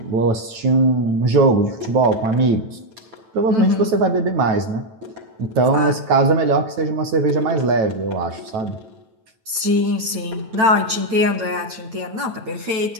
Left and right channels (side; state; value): left; late; 9.1 ms